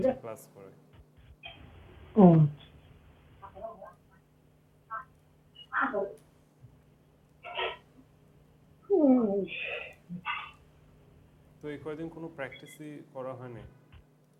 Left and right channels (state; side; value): identical; both; correlation 1.00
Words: ক্লাস করে। ও, তো এই কয়দিন কোনো প্র্যাকটিসই করা হয়নি।